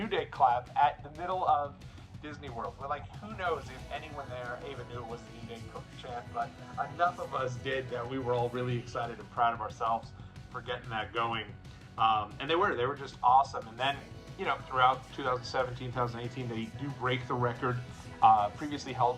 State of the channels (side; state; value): both; identical; correlation 1.00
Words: Day clap at the middle of Disney World. We're like, who knows if anyone there even knew it was the New Day chant, but enough of us did that we were all really excited and proud of ourselves for getting that going. And they were just awesome. And then, you know, throughout 2017, 2018, they do break the record previously